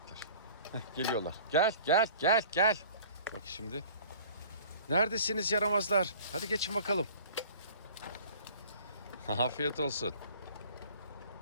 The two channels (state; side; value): inverted; both; correlation -0.47